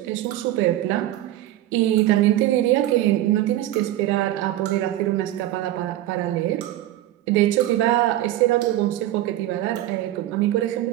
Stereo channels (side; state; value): left; quieter; 14.3 dB